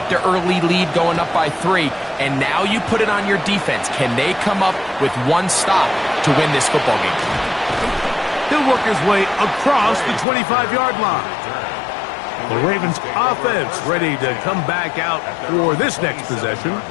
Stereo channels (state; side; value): drops out; right; at 10.2 s